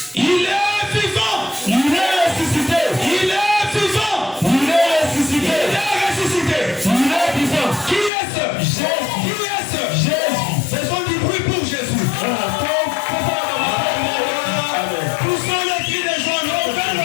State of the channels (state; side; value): drops out; right; at 8.1 s